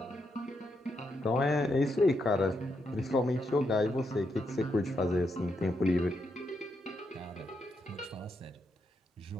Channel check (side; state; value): both; normal; correlation 0.81